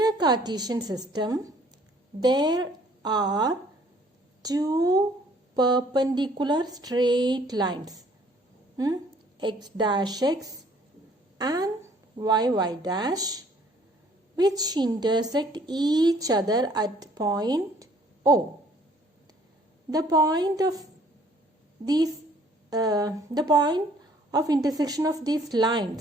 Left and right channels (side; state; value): both; normal; correlation 0.60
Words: Cartesian system, there are two perpendicular straight lines, x dash x and y dash, which intersect each other at point O. The point of intersection of these